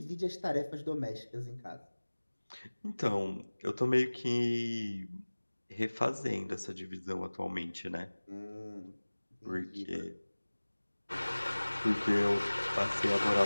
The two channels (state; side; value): inverted; both; correlation -1.00